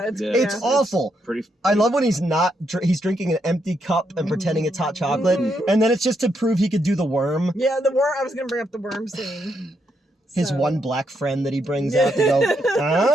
It's awful. Pretty I love when he's drinking an empty cup and pretending it's hot chocolate. And then it's just to prove he could do the worm. Yeah, the worm. I was going to bring up the worm scene. His one black friend that he brings out to go,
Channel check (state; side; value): normal; both; correlation 0.79